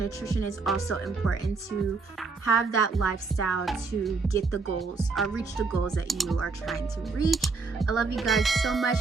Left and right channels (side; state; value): left; quieter; 4.3 dB